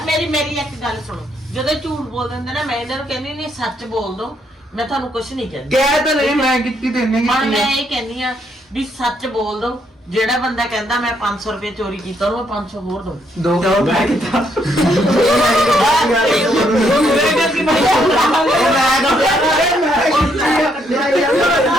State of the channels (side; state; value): both; normal; correlation 0.73